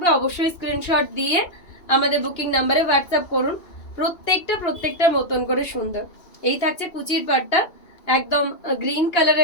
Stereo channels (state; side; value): late; right; 2.8 ms